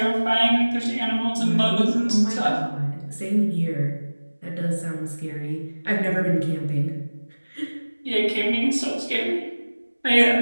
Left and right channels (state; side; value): inverted; both; correlation -1.00